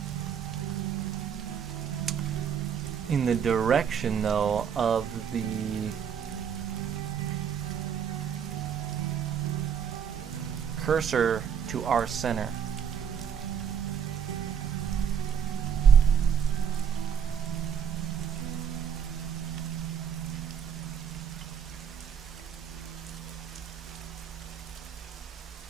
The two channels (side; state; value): left; quieter; 7.7 dB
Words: In the direction, though, of the cursor to our center.